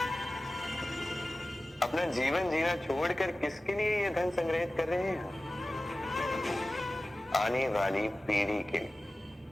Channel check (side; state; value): both; normal; correlation 0.96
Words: अपना जीवन जीना छोड़कर किसके लिए ये धन संग्रहित कर रहे हैं? आने वाली पीढ़ी के लिए।